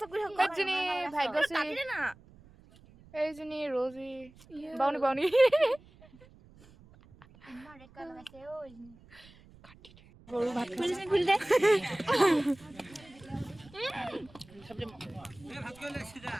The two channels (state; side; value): noise; right; rumble, 24 dB below the sound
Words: কৰি এজনী ভাগ্যশ্ৰী না এইজনী ৰজি বাউনি বাউনি ইমান ৰেড কালাৰ লগাইছে ঐ গৰু ভাত খুলি দে